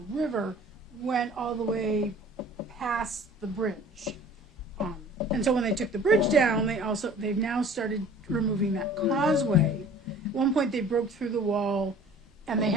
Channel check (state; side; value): normal; both; correlation 0.48